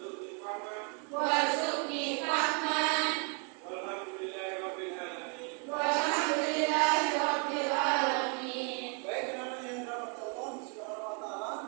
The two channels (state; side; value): quieter; left; 38.1 dB